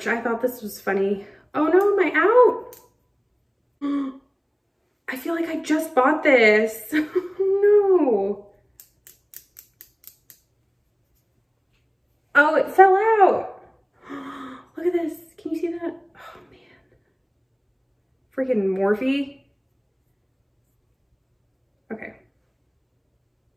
I thought this was funny. Oh no, am I out? I feel like I just bought this. No. Oh, it fell out. Look at this. Can you see that? Oh man. Freaking Morphe. Okay.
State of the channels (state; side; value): identical; both; correlation 1.00